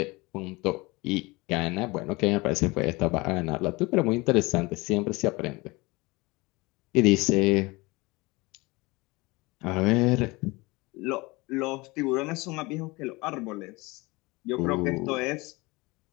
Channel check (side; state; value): right; quieter; 23.7 dB